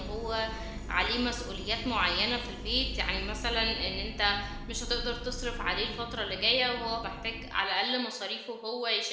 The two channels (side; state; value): both; identical; correlation 1.00